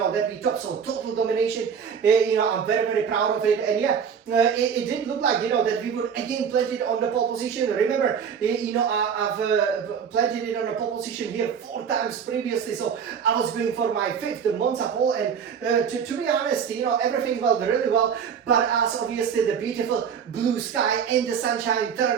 we topped, so total domination, I'm very proud of it, and yeah, it did look like, that we would again plant it on the pole position. Remember, I've planted it on the pole position here 4 times previously, so I was going for my 5th Monza pole, and to be honest, everything went really well, but as obviously the beautiful blue sky and the sunshine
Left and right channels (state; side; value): quieter; left; 7.2 dB